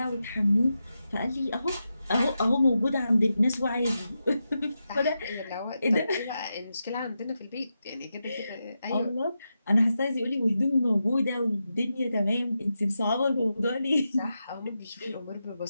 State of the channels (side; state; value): both; inverted; correlation -0.88